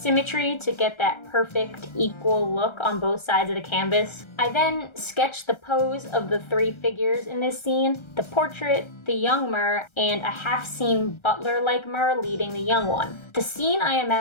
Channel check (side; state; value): right; late; 1.3 ms